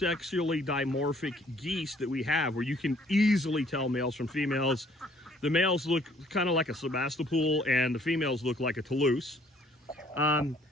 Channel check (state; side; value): normal; both; correlation 0.61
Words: dimorphic geese that we have where you can easily tell males from females. The males look kind of like a Sebastopol and the females look like a Toulouse.